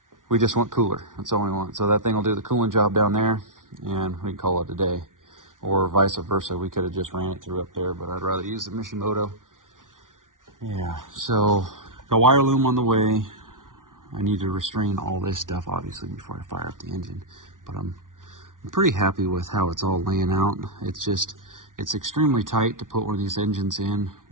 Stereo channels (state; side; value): late; left; 0.88 ms